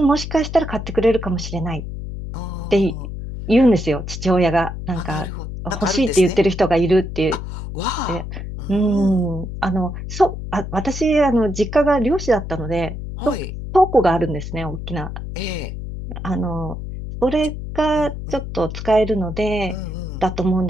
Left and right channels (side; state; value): left; noise; hum, 7 dB below the sound